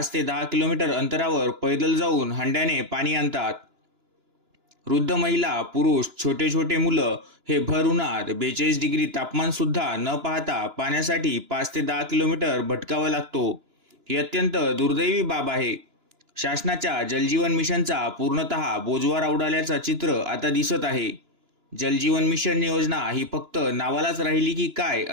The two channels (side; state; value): left; late; 2.9 ms